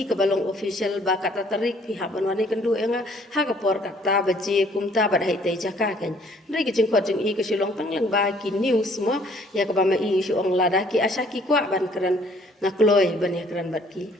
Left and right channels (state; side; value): normal; both; correlation 0.60